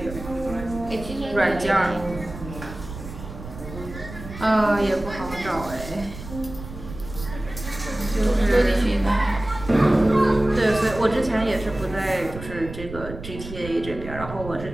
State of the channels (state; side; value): noise; right; rumble, 12 dB below the sound